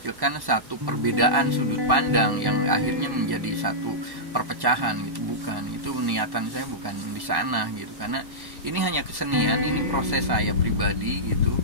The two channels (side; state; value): left; late; 1.1 ms